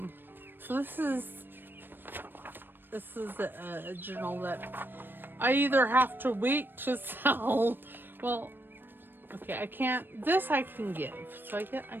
this is a journal that I either have to wait to sell. Well, okay, I can't. This I can give. So I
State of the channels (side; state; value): left; late; 0.095 ms